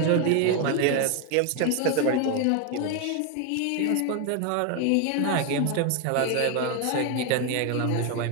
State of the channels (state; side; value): different; both; correlation 0.01